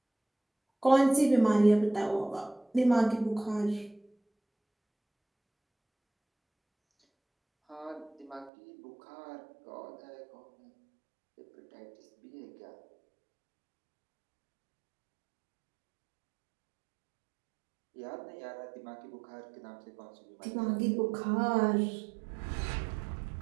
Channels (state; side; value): drops out; left; at 8.5 s